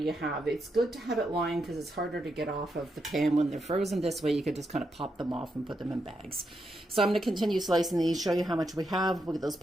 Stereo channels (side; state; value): both; normal; correlation 0.83